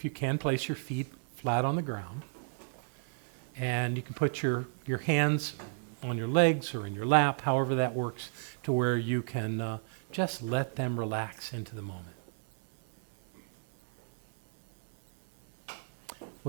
you can, place your feet flat on the ground. And you can put your hands on your legs or in your lap, however that works, to where you can just let them relax into the moment.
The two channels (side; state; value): left; silent; 56 dB below the other